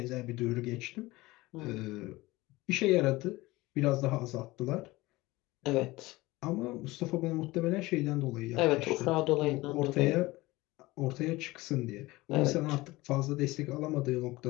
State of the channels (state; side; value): quieter; right; 20.1 dB